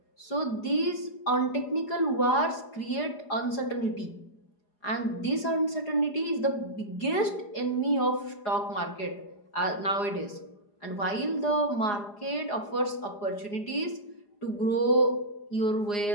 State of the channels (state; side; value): late; right; 4.9 ms